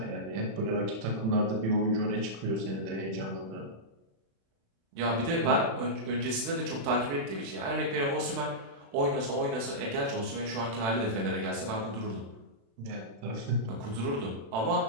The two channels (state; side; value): late; left; 36 ms